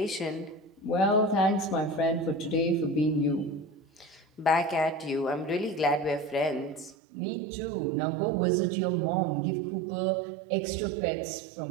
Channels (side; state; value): left; drops out; at 7.0 s